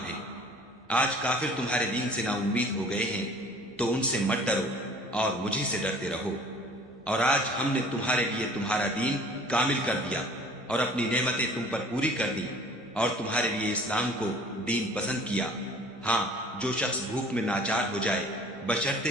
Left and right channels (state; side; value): normal; both; correlation 0.49